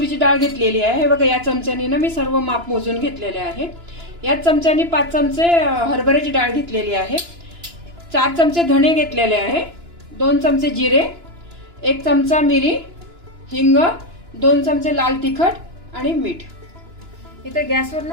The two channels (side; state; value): left; late; 2.9 ms